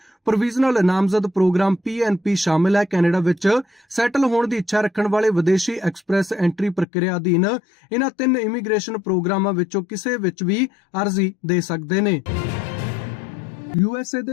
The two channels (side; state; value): right; drops out; at 6.9 s